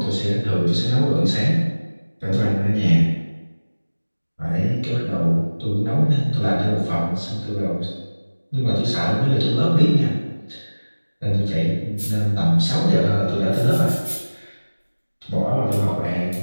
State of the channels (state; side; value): inverted; both; correlation -1.00